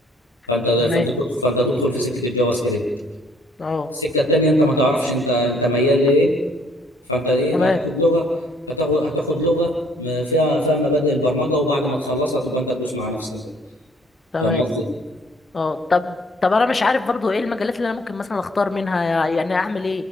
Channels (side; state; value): both; normal; correlation 0.62